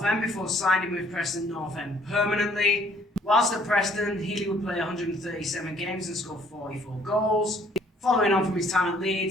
End before signing with Preston North End permanently. Whilst at Preston, Healy would play 137 games and score 44 goals. Following on from his time at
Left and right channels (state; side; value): normal; both; correlation 0.61